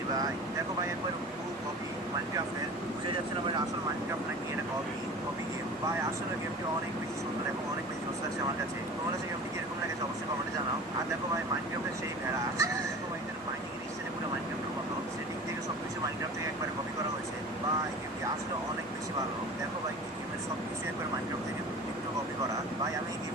ভাই। দেখো ভাই একবার পুরো কপি মাইনক্রাফটের, বুঝে যাচ্ছে না ভাই আসল মাইনক্রাফট নাকি এটা কপি কপি গেম। ভাই আসলে গেমটি অনেক বেশি সুন্দর এবং অনেক বেশি জোস আছে আমার কাছে। তোমার কাছে গেমটি কিরকম লাগেছে অবশ্যই কমেন্টে জানাও। আর দেখো ভাই মাইনক্রাফটের সেই ভেড়া, দেখো ভাই এখানে মাইনিং স্টাইলে পুরো মাইনক্রাফটের মতো সেটিং থেকে সব কিছু মাইনক্রাফট থেকে একবার কপি করা হয়েছে। ভাই গেমটি আসলে অনেক বেশি ভালো। দেখো ভাই এই গেমের সব কিছু একবার মাইনক্রাফট থেকে একটু কপি করা। ভাই আমি এই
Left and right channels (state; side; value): normal; both; correlation 0.38